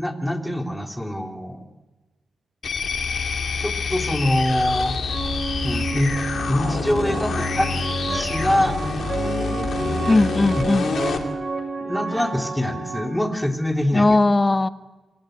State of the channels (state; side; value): normal; both; correlation 0.94